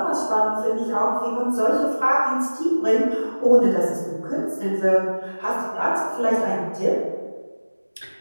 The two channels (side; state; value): both; inverted; correlation -1.00